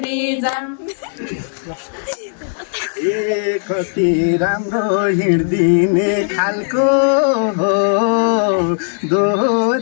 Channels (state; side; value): silent; right; digital silence